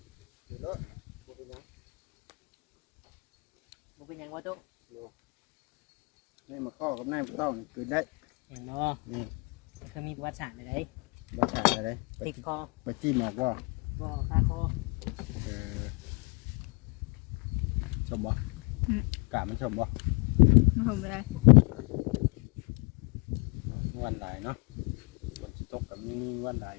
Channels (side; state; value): right; quieter; 32.1 dB